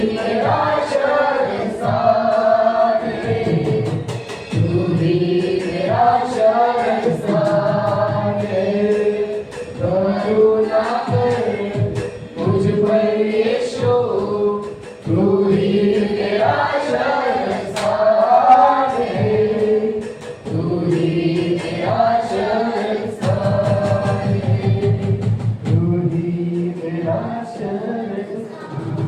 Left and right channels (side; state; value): both; identical; correlation 1.00